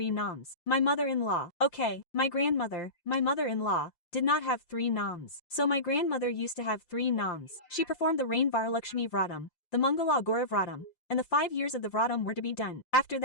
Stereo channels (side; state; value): right; late; 5.7 ms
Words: noms. My mother-in-law, okay, my grandmother, my mother-in-law, did not have 3 noms. So my grandmother used to have 3 noms. She performed the Rain Varalakshmi Vratam, the Mangala Gora Vratam, and the 5 years of the Vratam were to be done. After